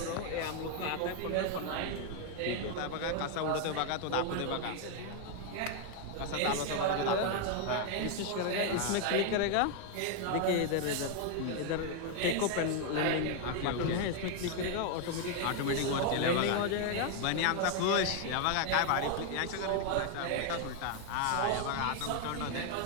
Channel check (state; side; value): different; both; correlation 0.01